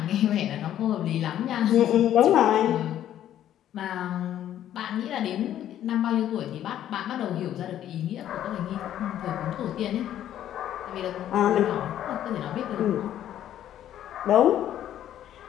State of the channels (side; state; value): right; quieter; 11.4 dB